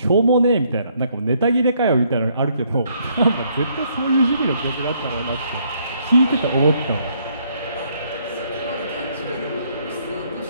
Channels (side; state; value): both; inverted; correlation -0.69